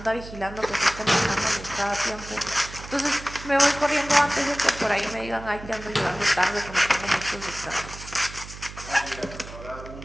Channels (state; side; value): noise; right; hum, 14 dB below the sound